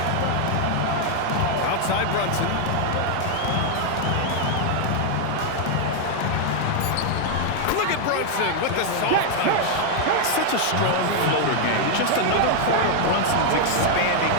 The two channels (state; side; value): different; both; correlation 0.00